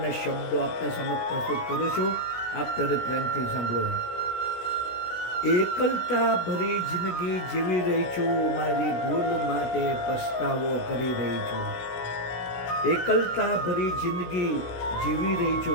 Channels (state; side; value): late; right; 16 ms